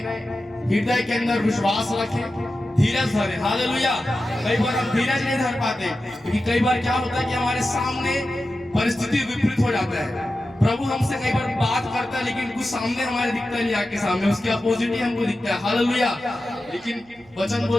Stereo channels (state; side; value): noise; right; hum, 28 dB below the sound